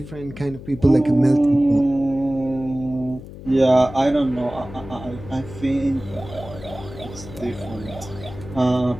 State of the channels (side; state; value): left; noise; hum, 14 dB below the sound